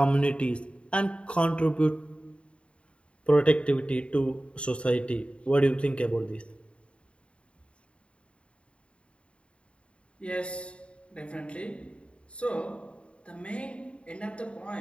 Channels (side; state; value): right; late; 0.059 ms